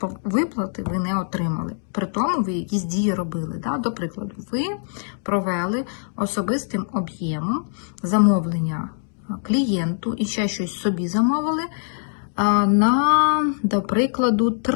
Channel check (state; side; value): silent; right; digital silence